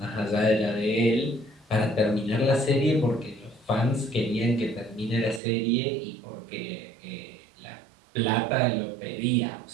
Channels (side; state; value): left; drops out; at 5.4 s